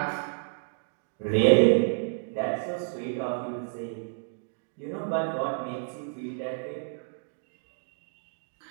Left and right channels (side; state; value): left; silent; 58 dB below the other